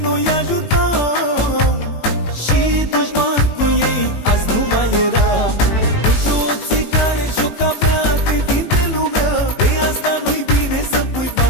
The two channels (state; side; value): late; right; 18 ms